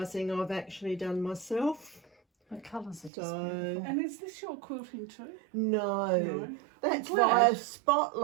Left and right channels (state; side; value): drops out; left; at 3.1 s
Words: I've actually done myself. The colours are just So beautiful. And is this your quilting too? no, that's I'm glad. via